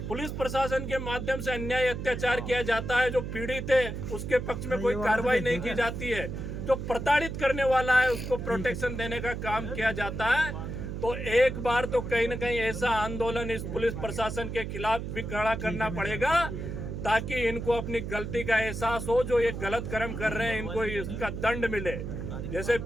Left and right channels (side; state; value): right; noise; hum, 6 dB below the sound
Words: पुलिस प्रशासन के माध्यम से अन्याय अत्याचार किया जाता है, जो पीड़ित है उसके पक्ष में कोई कार्रवाई नहीं की जाती है, जो प्रताड़ित करने वाला है उसको प्रोटेक्शन देने का काम किया जाता है। तो एक बार तो कहीं न कहीं ऐसा आंदोलन इस पुलिस प्रशासन के खिलाफ भी खड़ा करना पड़ेगा, ताकि इनको अपनी गलती का एहसास हो, जो ये गलत कर्म कर रहे हैं इनको इसका दंड मिले। जैसे